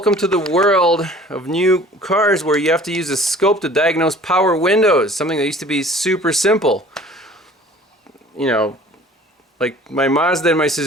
to the world of new cars where you have to use a scope to diagnose power windows, something that used to be super simple. You know, like my Mazda and my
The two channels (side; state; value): both; normal; correlation 0.48